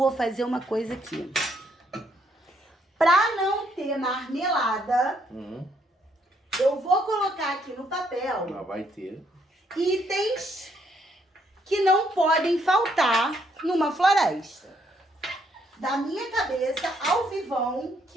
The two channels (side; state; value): both; normal; correlation 0.71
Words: fazer uma coisa aqui. Pra não ter marmelada, eu vou colocar aqui no papel Mas vai ter. itens que não podem faltar numa floresta. Da minha cabeça, ao vivão,